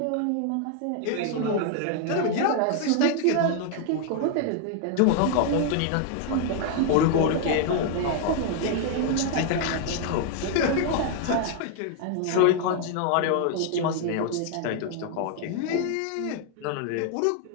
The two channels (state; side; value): different; both; correlation 0.00